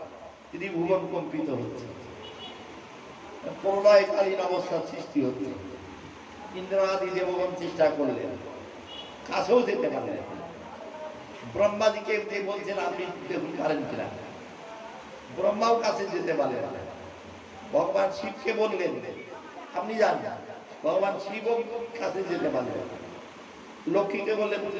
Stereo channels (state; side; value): identical; both; correlation 1.00